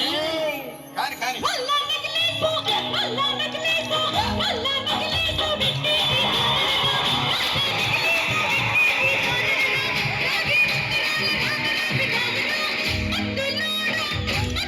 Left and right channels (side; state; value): both; identical; correlation 1.00